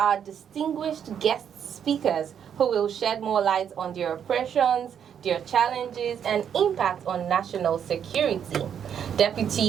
distinguished guest speakers who will shed more light on their operations, their challenges, and impact on national security.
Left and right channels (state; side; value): quieter; left; 8.4 dB